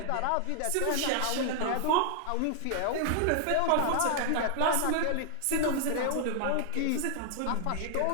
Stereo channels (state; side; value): different; both; correlation 0.00